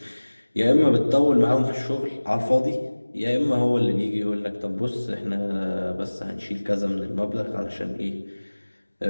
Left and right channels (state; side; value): inverted; both; correlation -1.00